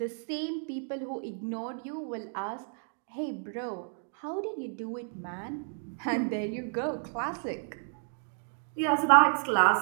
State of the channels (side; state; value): left; silent; 57 dB below the other